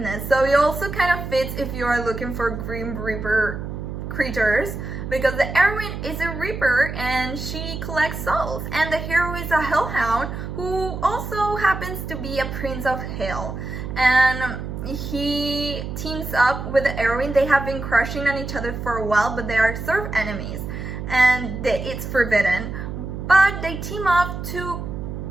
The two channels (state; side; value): noise; right; hum, 6 dB below the sound